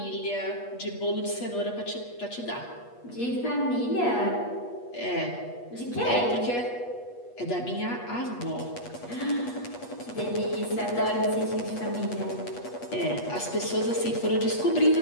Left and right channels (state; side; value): late; right; 8.3 ms